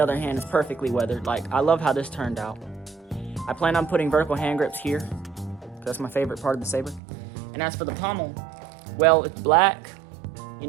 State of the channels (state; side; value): drops out; left; at 7.0 s